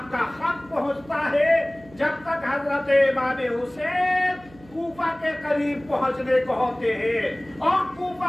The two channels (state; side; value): noise; right; hum, 24 dB below the sound